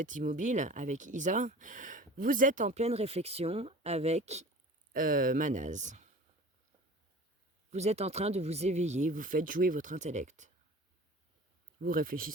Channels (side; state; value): both; normal; correlation 0.40